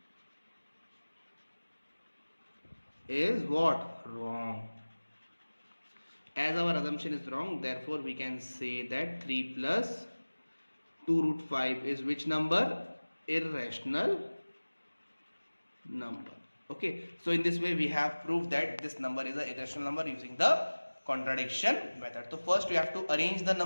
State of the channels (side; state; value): both; inverted; correlation -1.00